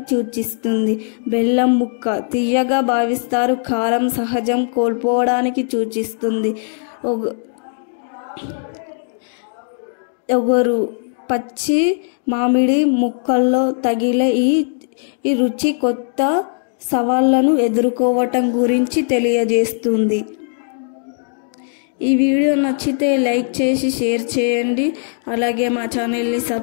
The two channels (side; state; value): right; silent; digital silence